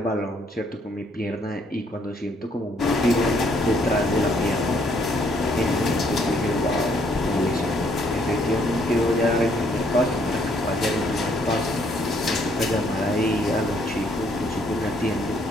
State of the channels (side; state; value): both; normal; correlation 0.67